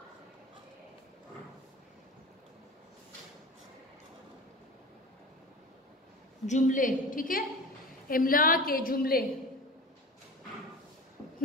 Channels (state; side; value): normal; both; correlation 0.34